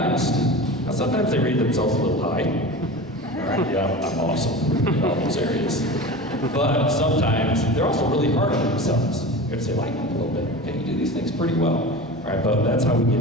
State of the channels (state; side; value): normal; both; correlation 0.32